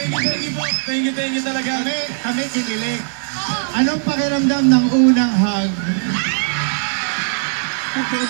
Thank you talaga. Kami kinilig. Anong pakiramdam ng unang hug?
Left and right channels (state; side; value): silent; left; 67 dB below the other